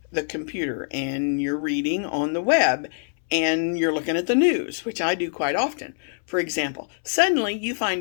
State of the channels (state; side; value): silent; right; 62 dB below the other